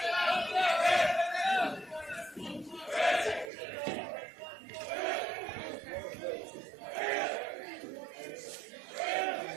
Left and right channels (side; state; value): left; drops out; at 3.5 s